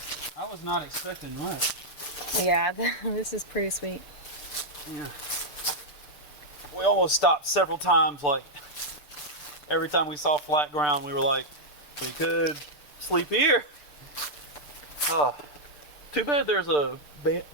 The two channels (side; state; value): right; late; 6.8 ms